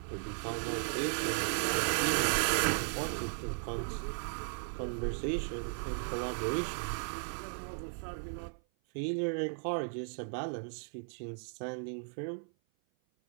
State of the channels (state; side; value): silent; left; 54 dB below the other